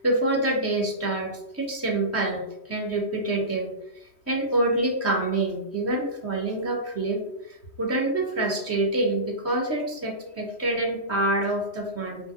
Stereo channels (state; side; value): late; right; 3.1 ms